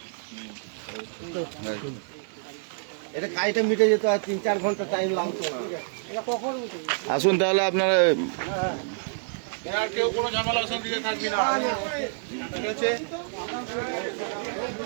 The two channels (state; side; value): silent; left; 60 dB below the other